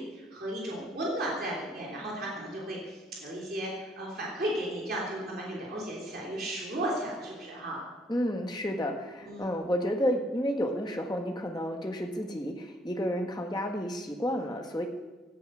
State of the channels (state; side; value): normal; both; correlation 0.65